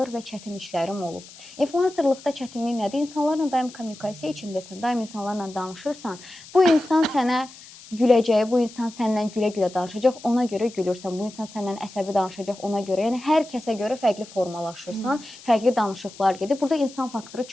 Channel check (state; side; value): noise; left; hiss, 19 dB below the sound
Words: və çətin işlərim olub. Influencerlıqda çətinlik nədir? İnsanlarla daim kommunikasiya içindəsən, daim insanlarla danışırsan. Bu insan sənə güləcək, bu insan səndən gülə-gülə danışacaq, ona görə gülürsən. Bu insan səndən əsəbi danışacaq, ona görə. Yəni, hər kəsə görə fərqli formalaşırsan, fərqli danışıqlar gedir. Burada insan faktoru